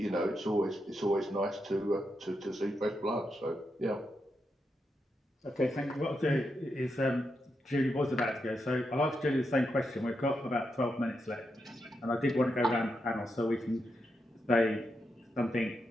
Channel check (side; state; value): both; normal; correlation 0.84